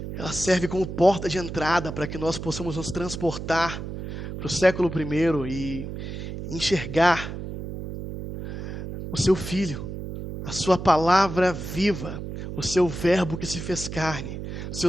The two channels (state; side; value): noise; right; hum, 7 dB below the sound